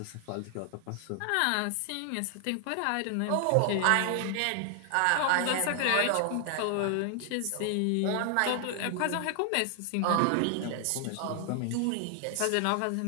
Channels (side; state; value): both; different; correlation 0.00